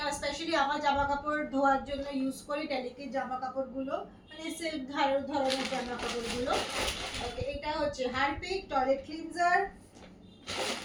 স্পেশালি আমার জামা কাপড় ধোয়ার জন্য ইউজ করি, ডেলিকেট জামা কাপড়গুলো, মানে সিল্ক ধরনের জামা কাপড়গুলো। ওকে, এটা হচ্ছে হারপিক টয়লেট ক্লিনজার।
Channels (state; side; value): identical; both; correlation 1.00